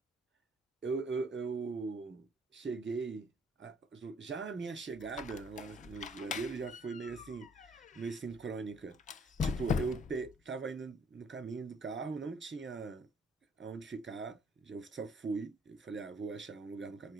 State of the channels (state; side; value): normal; both; correlation 0.62